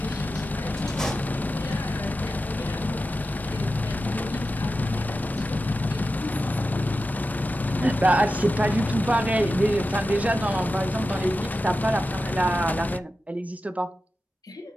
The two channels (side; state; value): both; normal; correlation 0.91